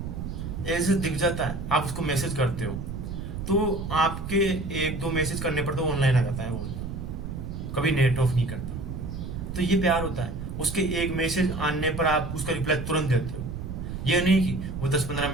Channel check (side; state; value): right; noise; rumble, 6 dB below the sound